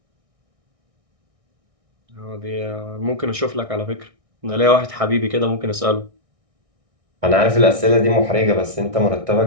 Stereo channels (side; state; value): left; late; 1.6 ms